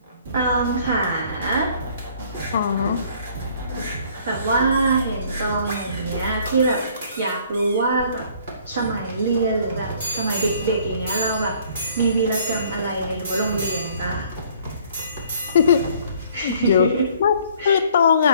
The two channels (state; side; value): inverted; both; correlation -0.58